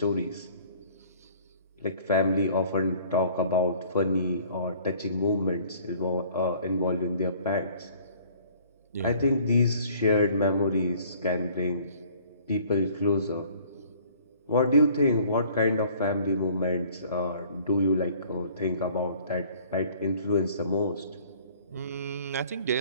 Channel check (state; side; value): inverted; both; correlation -0.55